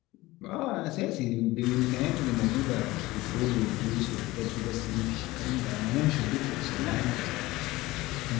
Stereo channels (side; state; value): right; quieter; 19.4 dB